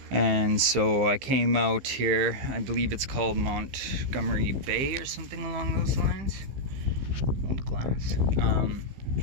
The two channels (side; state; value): left; late; 15 ms